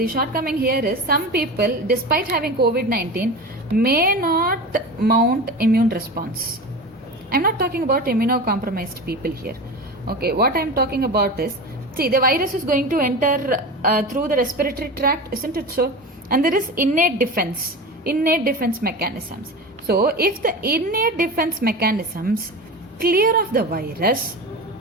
shortcoming here is some people, despite having COVID-19, may not mount immune response. I'm not talking about immunocompromised people here. Okay, what I'm talking about is, see, the virus is going to enter through the respiratory tract, isn't it so? And there is innate defense mechanisms. So, if the innate defense mechanisms clear of the virus,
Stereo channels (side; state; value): both; normal; correlation 0.28